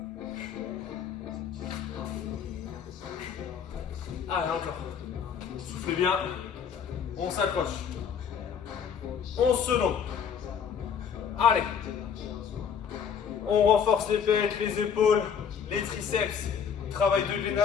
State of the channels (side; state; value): right; quieter; 7.3 dB